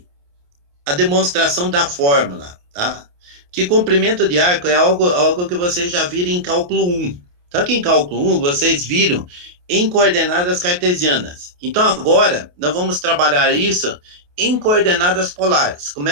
a demonstração da fórmula, tá? Que comprimento de arco é algo que vocês já viram em cálculo 1. Só que em cálculo 1 vocês viram em coordenadas cartesianas. Então agora nós vamos trabalhar isso em coordenadas polares. Como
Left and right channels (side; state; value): left; late; 28 ms